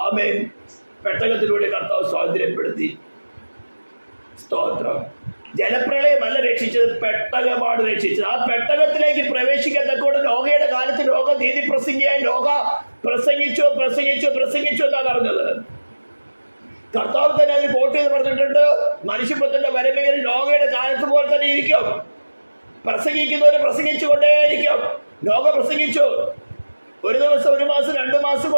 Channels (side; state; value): both; inverted; correlation -1.00